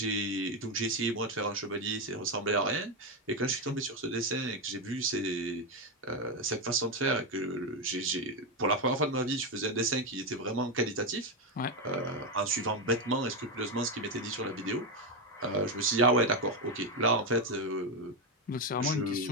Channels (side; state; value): both; normal; correlation 0.07